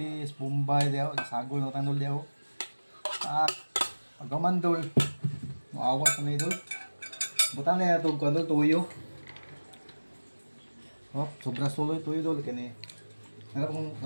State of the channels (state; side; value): inverted; both; correlation -1.00